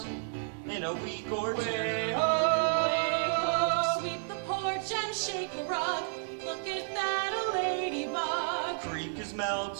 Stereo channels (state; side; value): silent; left; 56 dB below the other